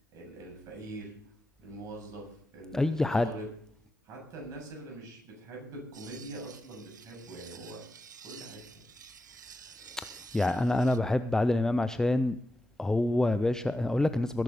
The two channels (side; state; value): both; normal; correlation 0.90